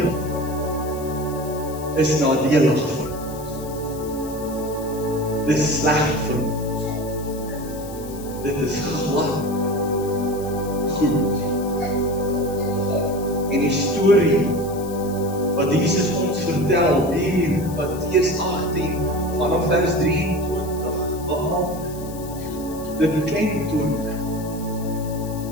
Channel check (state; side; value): noise; left; hiss, 17 dB below the sound